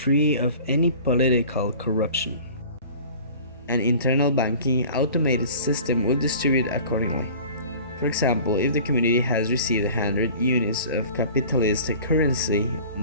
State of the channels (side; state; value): both; inverted; correlation -0.43